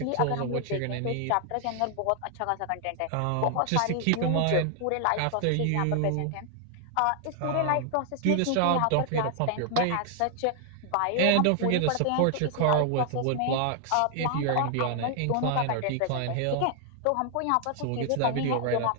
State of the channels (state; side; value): different; both; correlation 0.00